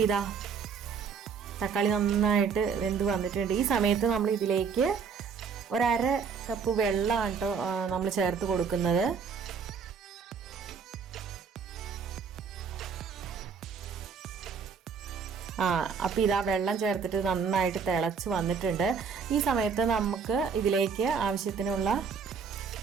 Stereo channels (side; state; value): left; quieter; 6.1 dB